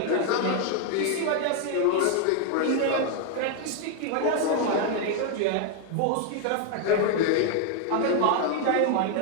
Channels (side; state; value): both; different; correlation 0.00